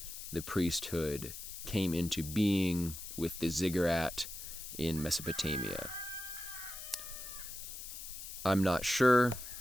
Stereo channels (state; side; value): noise; left; hiss, 10 dB below the sound